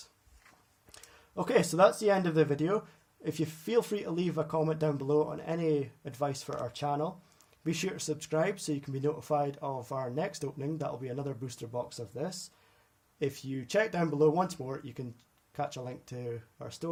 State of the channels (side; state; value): both; identical; correlation 1.00